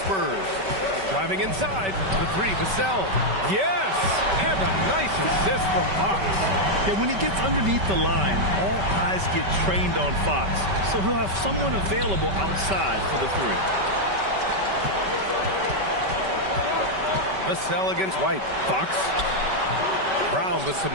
Spurs. Driving inside, the 3, Vassell. Yes! And a nice assist from Fox. Yeah, when he gets underneath the line, all eyes get trained on Fox. So he'll have someone available outside for the 3. Vassell against White. Fox. Brown with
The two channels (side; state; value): left; late; 5.2 ms